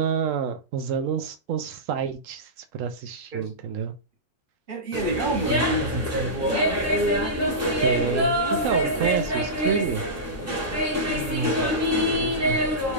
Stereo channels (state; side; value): normal; both; correlation -0.16